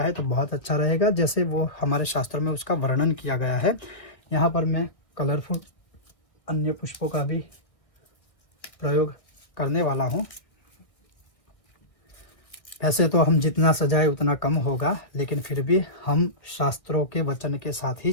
है तो बहुत अच्छा रहेगा, जैसे वो हमारे शास्त्र में उसका वर्णन किया गया है। यहाँ पर मैं कलरफुल अन्य पुष्पों का भी प्रयोग करने वाला हूँ। ऐसे तो हम जितना सजाए उतना कम होगा, लेकिन फिर भी हम शास्त्रों के वचन के साथ ही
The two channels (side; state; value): right; late; 1.8 ms